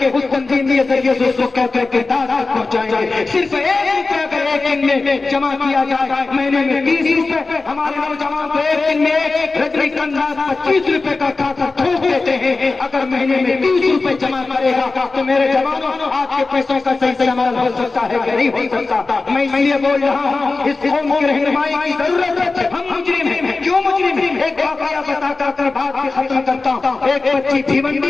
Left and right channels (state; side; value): quieter; right; 3.8 dB